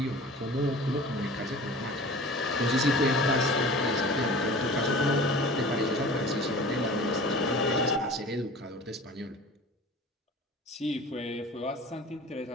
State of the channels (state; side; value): normal; both; correlation 0.41